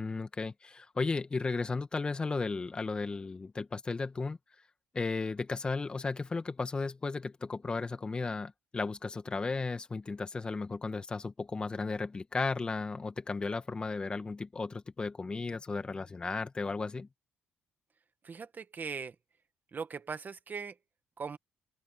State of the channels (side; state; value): right; quieter; 3.2 dB